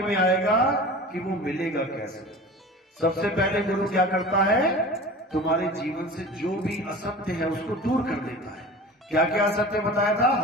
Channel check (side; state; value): both; normal; correlation 0.37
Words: आएगा कि वो मिलेगा कैसे। सबसे पहले गुरु क्या करता है? तुम्हारे जीवन से जो भी असत्य है उसको दूर कर देता है। क्या क्या असत्य बताया था?